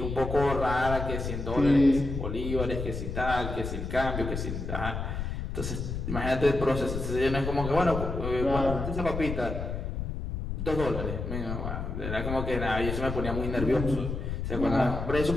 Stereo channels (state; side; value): noise; left; rumble, 4 dB below the sound